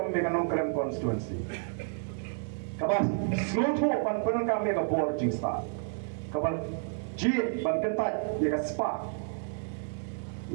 me anong Grand Constituency. Kabas sloto pan penon kami ka board jing sta kabal ji ban kentat ya ka spa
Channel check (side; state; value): left; silent; digital silence